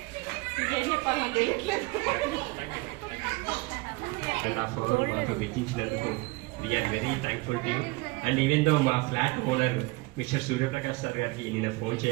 ఇంకేం చెప్పాలి నాకు తెలియట్లేదు. మాతో వెచ్చించినందుకు we are very thankful to you. And even though మా flat owner mister Suryaprakash sir గారికి నేను ఫోన్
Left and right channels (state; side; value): quieter; left; 24.0 dB